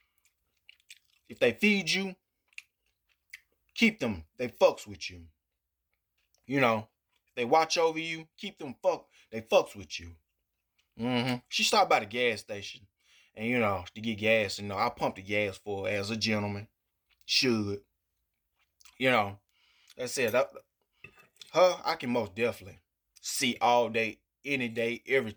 If they feed you, keep them. They fucks with you. If they watch over you, keep them. They fucks with you. She stopped by the gas station, and to get gas. I pumped the gas for her as a gentleman should. That said, her I can most definitely see all day, any day, every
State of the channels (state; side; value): identical; both; correlation 1.00